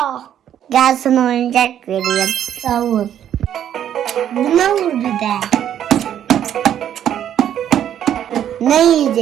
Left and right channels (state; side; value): quieter; left; 10.3 dB